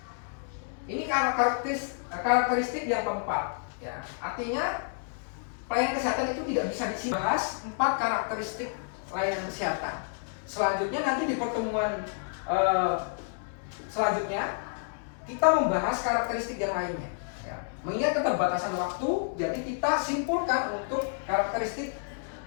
Ini karakteristik yang keempat. Ya. Artinya pelayanan kesehatan itu tidak bisa disimpan. 4 karakteristik layanan kesehatan. Selanjutnya nanti di pertemuan selanjutnya kita membahas karakteristik yang lainnya. Ya. Mengingat keterbatasan waktu, jadi kita simpulkan untuk karakteristik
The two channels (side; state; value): right; silent; 58 dB below the other